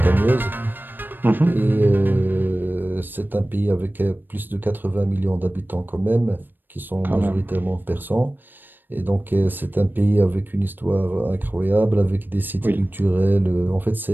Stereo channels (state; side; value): late; left; 0.093 ms